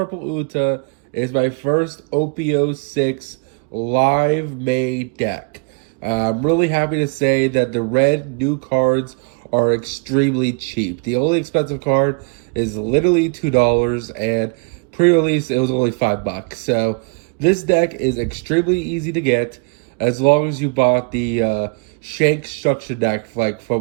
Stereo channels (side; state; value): left; quieter; 36.6 dB